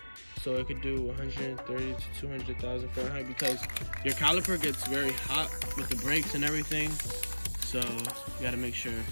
so it could do 130 to 200,000 Fahrenheit, because your caliper gets very hot with the brakes and everything. So you gotta make sure.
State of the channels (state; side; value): inverted; both; correlation -1.00